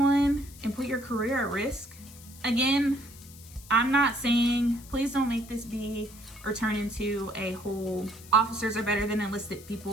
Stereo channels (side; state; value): left; noise; hiss, 19 dB below the sound